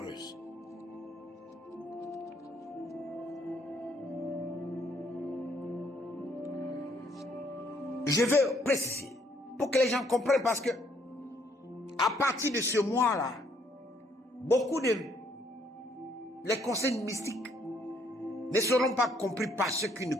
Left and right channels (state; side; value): normal; both; correlation 0.67